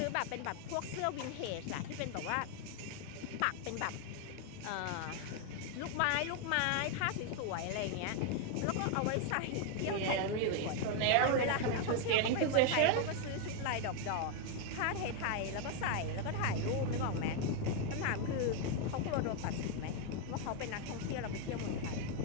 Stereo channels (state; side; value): different; both; correlation 0.01